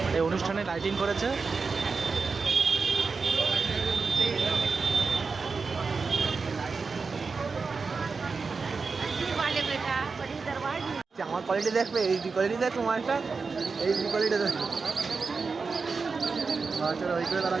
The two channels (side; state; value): left; quieter; 4.7 dB